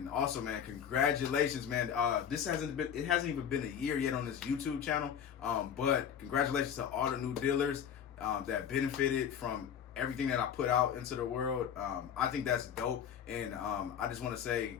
also, man, congratulations, man. It hasn't even been a year yet on this YouTube channel. But congratulations to all the new dealers that benefited from everything that I put out into the world. I think that's dope. And I just want to say,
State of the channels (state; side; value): quieter; right; 8.5 dB